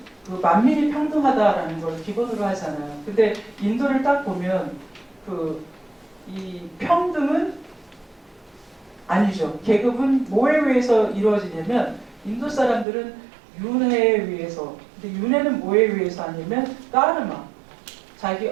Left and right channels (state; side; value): drops out; left; at 12.9 s